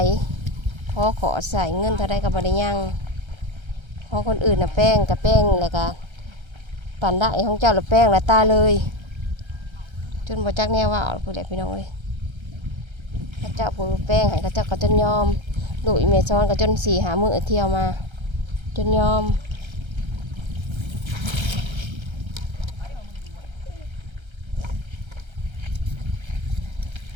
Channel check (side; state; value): left; late; 1.3 ms